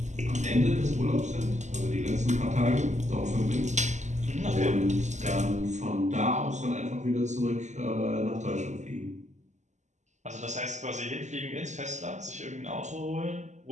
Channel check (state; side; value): late; left; 0.34 ms